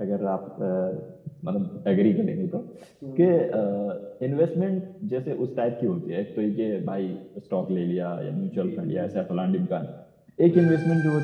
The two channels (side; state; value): both; identical; correlation 1.00